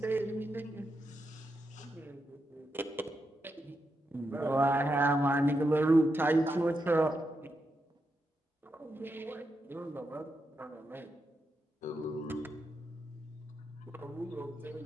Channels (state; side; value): normal; both; correlation 0.85